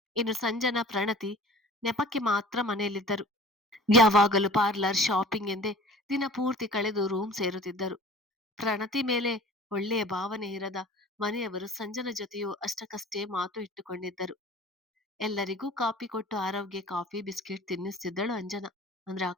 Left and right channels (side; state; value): both; normal; correlation 0.45